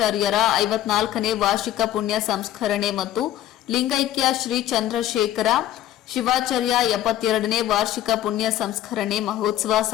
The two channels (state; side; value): quieter; right; 12.7 dB